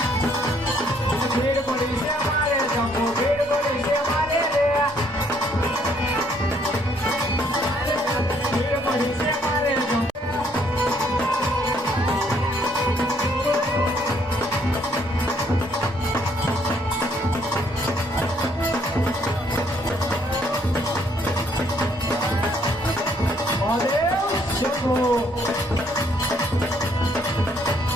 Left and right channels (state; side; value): normal; both; correlation 0.67